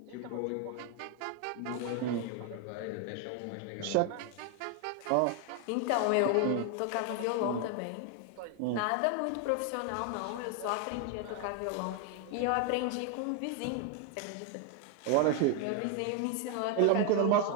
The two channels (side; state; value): both; different; correlation 0.01